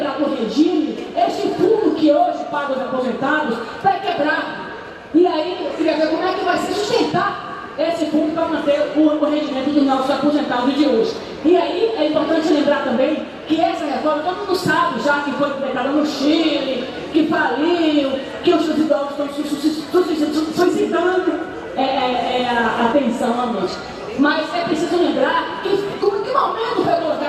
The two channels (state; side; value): identical; both; correlation 1.00